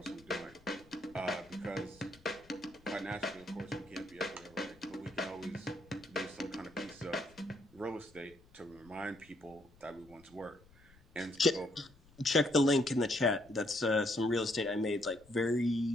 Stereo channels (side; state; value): left; noise; rumble, 26 dB below the sound